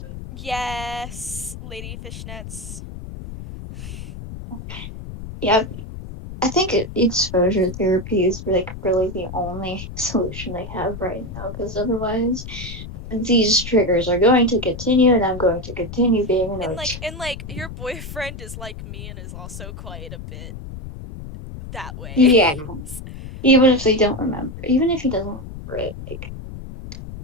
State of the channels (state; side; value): noise; left; rumble, 11 dB below the sound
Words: Yes, Lady Fishnets. Yeah, I think exposure therapy is like really the only solution I have right now, because otherwise these triggers are going to continue, and I'm going to continue being And annoyed. like your boyfriend is like me and is also quite a bit that way. Yeah, even if they don't remember, even if he doesn't remember it, like.